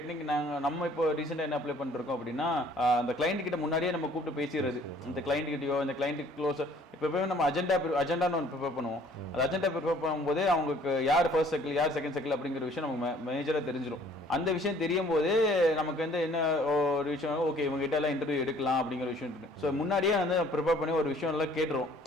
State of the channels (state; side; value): normal; both; correlation 0.57